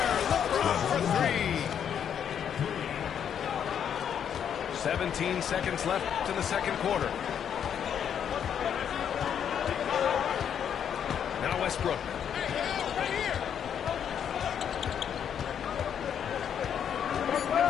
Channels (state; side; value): quieter; right; 8.5 dB